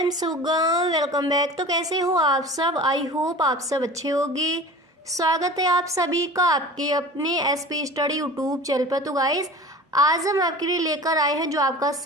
सुगम। Welcome back. तो कैसे हो आप सब? आई होप आप सब अच्छे होंगे। स्वागत है आप सभी का आपके अपने एसपी स्टडी यूट्यूब चैनल पर। तो गाइस, आज हम आपके लिए लेकर आए हैं जो आपका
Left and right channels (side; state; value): both; normal; correlation 0.38